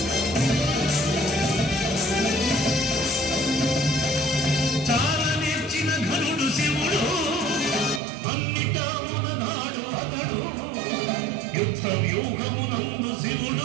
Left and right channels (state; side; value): drops out; left; at 8.0 s